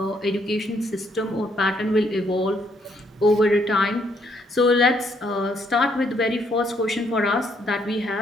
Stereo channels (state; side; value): normal; both; correlation 0.71